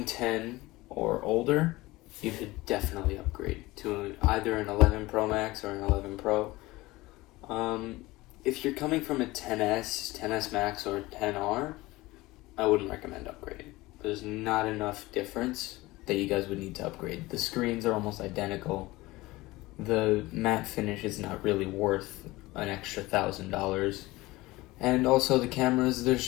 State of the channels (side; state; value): right; quieter; 19.9 dB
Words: 10 or older, you should definitely upgrade to either an 11 Pro Max or an 11 Pro. If you're coming from a 10S, 10S Max, or 10R, I wouldn't recommend upgrading. There's not enough difference that you guys would need to upgrade. The screens are almost identical. The matte finish is not really worth an extra $1,000. And also the cameras, there's